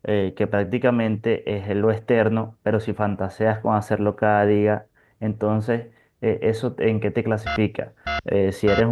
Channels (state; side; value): identical; both; correlation 1.00